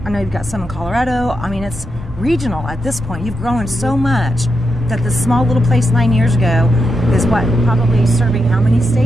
I know you've got some in Colorado. I mean, it's regional at this point. You've grown so much that this small little place 9 years ago is probably serving how many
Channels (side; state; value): both; normal; correlation 0.85